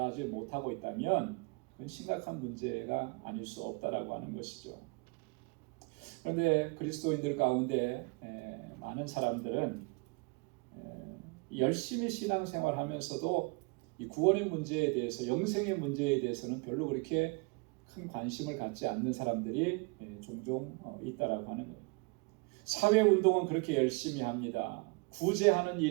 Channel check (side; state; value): left; quieter; 30.1 dB